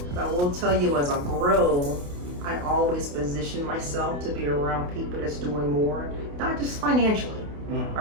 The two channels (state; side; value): late; left; 28 ms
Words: But I will tell you, as I grow, I always position myself to be around people that's doing more, not just financially,